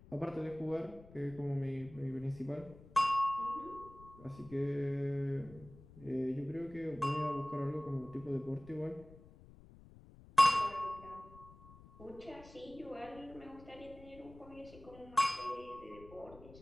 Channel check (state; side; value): noise; left; rumble, 20 dB below the sound